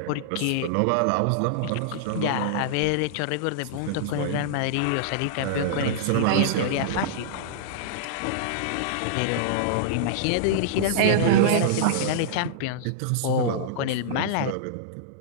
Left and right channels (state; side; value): different; both; correlation -0.02